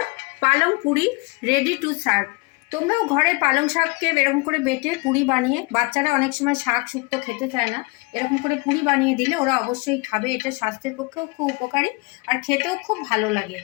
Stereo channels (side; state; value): right; quieter; 27.9 dB